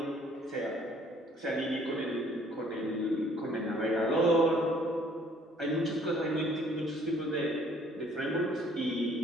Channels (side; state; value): both; normal; correlation 0.59